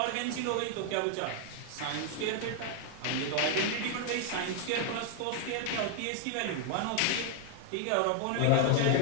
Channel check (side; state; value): both; different; correlation 0.00